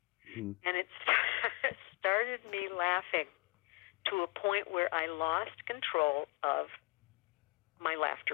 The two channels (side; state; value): right; quieter; 26.8 dB